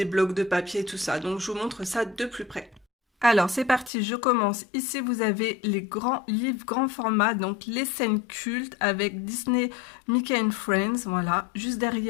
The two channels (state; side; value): drops out; right; at 3.9 s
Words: blocs de papier, tout ça. Donc, je vous montre ça de plus près. Alors, c'est parti, je commence. Ici, vous avez les grands livres, grand format, donc les scènes cultes avec Disney, Mickey and Friends, voilà. Juste